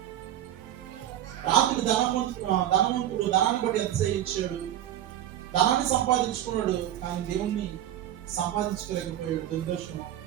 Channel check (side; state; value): left; quieter; 12.2 dB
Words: రాత్రి ధనవంతుడు ధనాన్ని బట్టి అతిశయించాడు, ధనాన్ని సంపాదించుకున్నాడు, కానీ దేవుణ్ణి సంపాదించుకోలేకపోయాడు. దుర్దర్శనం.